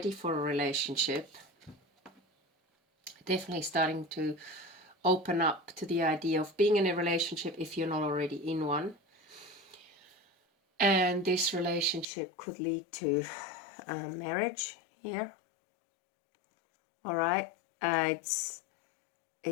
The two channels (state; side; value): drops out; right; at 12.1 s